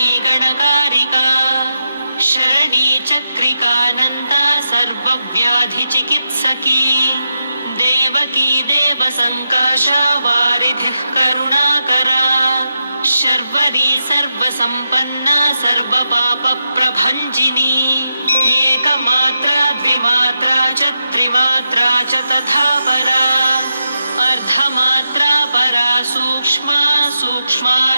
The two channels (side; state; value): both; inverted; correlation -0.87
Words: गणकारिका शरणी चक्रिकानन्ता सर्वव्याधिचिकित्सकी देवकी देवसङ्काशा वारिधिः करुणाकरा शर्वरी सर्वसम्पन्ना सर्वपापप्रभञ्जिनी एकमात्रा द्विमात्रा च त्रिमात्रा च तथा परा अर्धमात्रा परा सूक्ष्मा